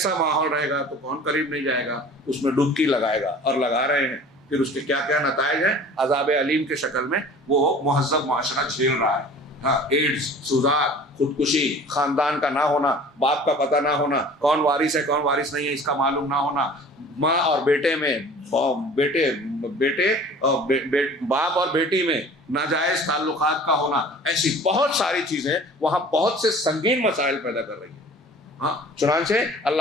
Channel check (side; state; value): both; normal; correlation 0.45